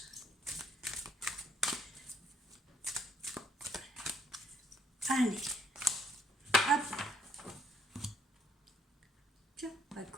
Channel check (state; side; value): normal; both; correlation 0.66